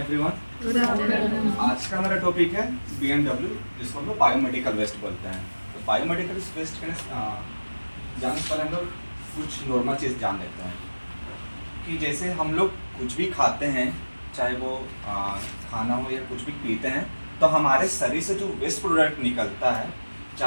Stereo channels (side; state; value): both; inverted; correlation -1.00